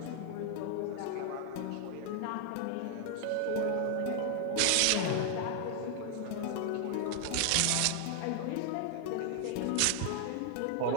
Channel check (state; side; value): different; both; correlation 0.00